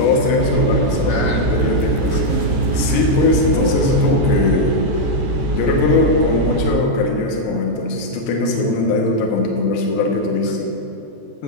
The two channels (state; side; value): late; right; 14 ms